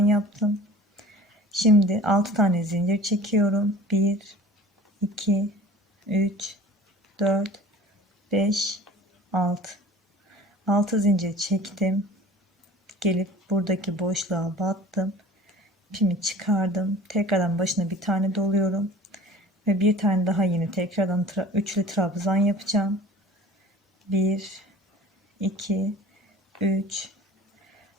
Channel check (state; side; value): normal; both; correlation 0.44